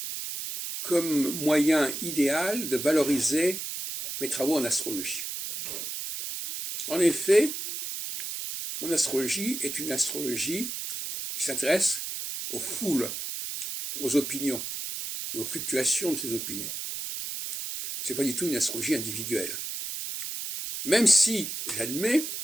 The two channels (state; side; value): noise; right; hiss, 5 dB below the sound